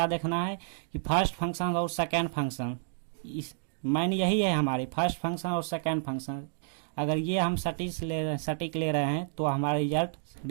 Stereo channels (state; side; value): silent; left; digital silence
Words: देखना है कि फर्स्ट फंक्शन और सेकेंड फंक्शन, इस मैन यही है हमारी, फर्स्ट फंक्शन और सेकेंड फंक्शन। अगर ये हम सटीक ले रहे हैं तो हमारे